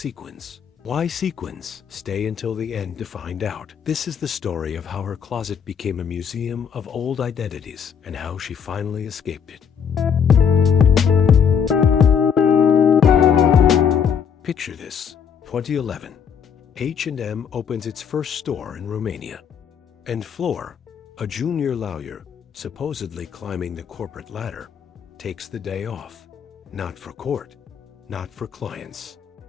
Why sequins? Stay until the end to find out. This is the story of how her closet became a museum of old identities and how she finally escaped it. Picture this, 2011. H&M opens its first store in Romania. And Fleur, a junior lawyer, supposedly climbing the corporate ladder, takes the day off. Not for court, not for clients,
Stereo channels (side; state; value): right; quieter; 7.3 dB